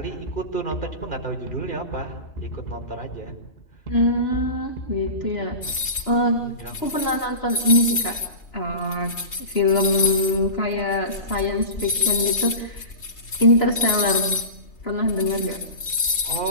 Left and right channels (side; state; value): right; late; 3.3 ms